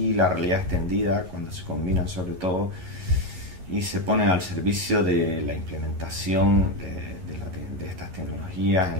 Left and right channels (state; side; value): late; left; 11 ms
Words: la realidad extendida cuando se combinan sobre todo y se ponen al servicio de la implementación de estas tecnologías en